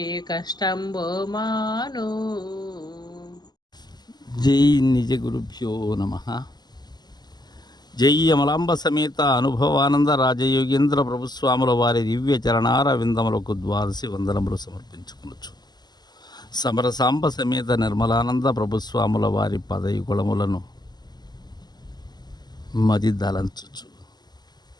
కష్టంబో మాను. జై నిజ గురుభ్యో నమః. జై అమలాంబ సమేత అనుభవానంద రాజయోగేంద్ర ప్రభుస్వాముల వారి దివ్య చరణార విందములకు ద్వాదశి వందనములు సమర్పించుకొనొచ్చు. సమరసాంబ సమేత నిర్మలానంద ప్రభుస్వాముల వారి పదయుగుళములను మది దలంచుచు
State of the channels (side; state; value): right; late; 0.20 ms